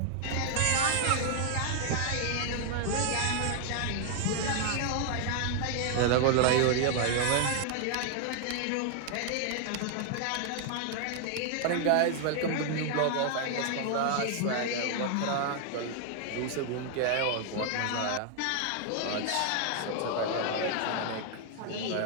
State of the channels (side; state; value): both; different; correlation 0.00